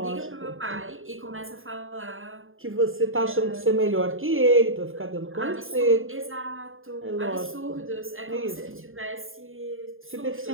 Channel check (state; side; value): late; left; 0.59 ms